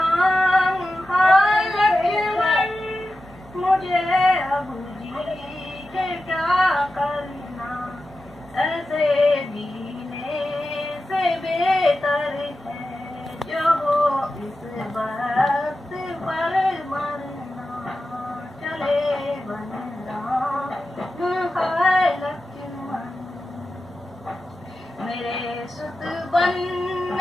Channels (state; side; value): normal; both; correlation 0.92